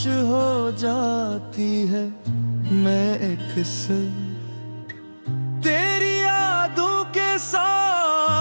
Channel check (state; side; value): inverted; both; correlation -1.00